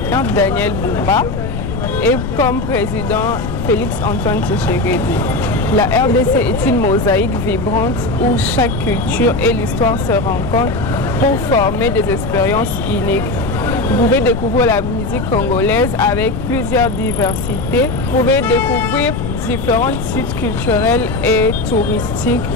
Daniel Bumba et comme président Félix Antoine Tshisekedi. La RDC est une mosaïque vibrante où chaque culture et l'histoire se rencontrent pour former des expériences uniques. Vous pouvez découvrir la musique congolaise avec plusieurs diversités. Vous pouvez découvrir différents sites culturels et touristiques.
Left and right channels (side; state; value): left; noise; rumble, 4 dB below the sound